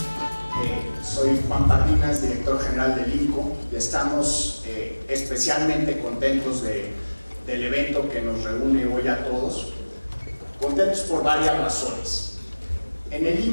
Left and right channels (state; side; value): inverted; both; correlation -1.00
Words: Soy Juan Pardinas, director general del INCO, y estamos especialmente contentos del evento que nos reúne hoy a todos. Contentos por varias razones. En el